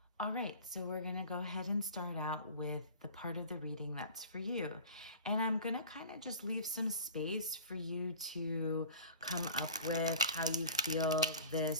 All right, so we're going to go ahead and start out with the part of the reading that's for you. And I'm going to kind of just leave some space for you to come up with how you feel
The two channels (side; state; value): both; inverted; correlation -0.39